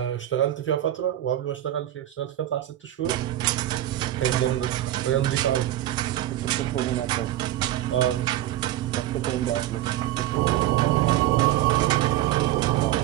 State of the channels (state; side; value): quieter; left; 13.8 dB